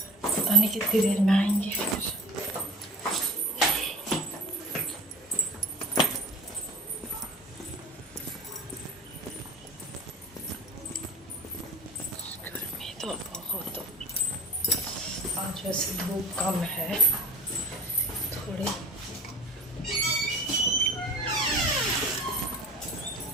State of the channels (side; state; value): both; normal; correlation 0.40